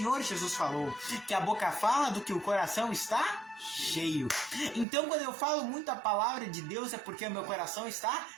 Jesus falou, que a boca fala do que o coração está cheio. Então, quando eu falo muito a palavra de Deus, é porque o meu coração está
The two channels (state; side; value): drops out; left; at 4.9 s